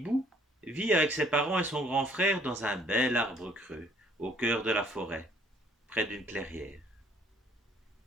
vit avec ses parents et son grand frère dans un bel arbre creux, au cœur de la forêt, près d'une clairière.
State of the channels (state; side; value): normal; both; correlation 0.60